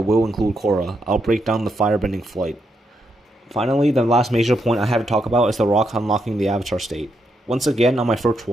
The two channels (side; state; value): both; normal; correlation 0.81